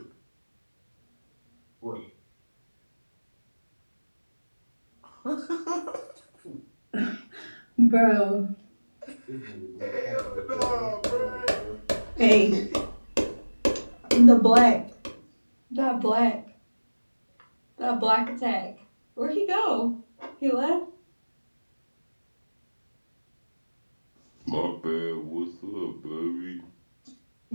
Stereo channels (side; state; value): both; inverted; correlation -1.00